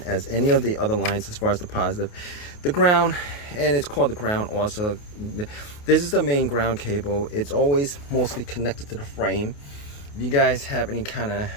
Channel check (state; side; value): late; right; 28 ms